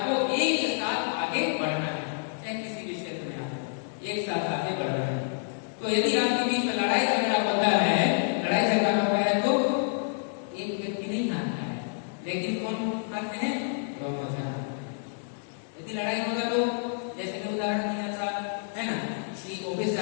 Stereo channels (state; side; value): silent; right; digital silence